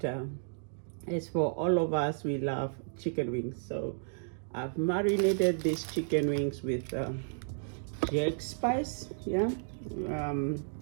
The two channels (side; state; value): left; silent; digital silence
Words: as for all of us, we love chicken wings. So I've marinated these chicken wings with jack spice, yeah,